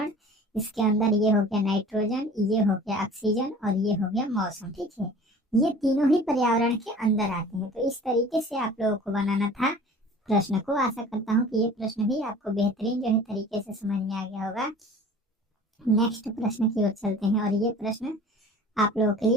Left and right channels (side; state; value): both; normal; correlation 0.44